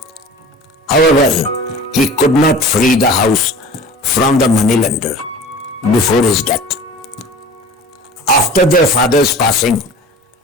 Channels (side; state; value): both; normal; correlation 0.40